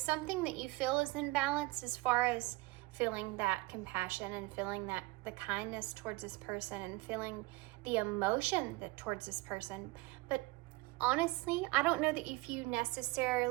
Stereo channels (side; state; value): left; quieter; 22.3 dB